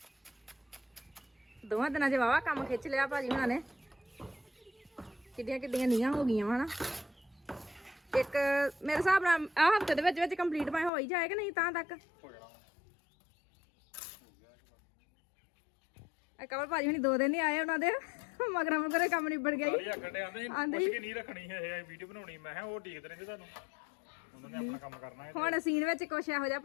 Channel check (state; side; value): drops out; right; at 10.9 s